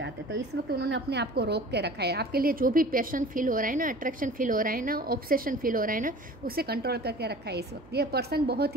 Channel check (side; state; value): right; noise; hum, 23 dB below the sound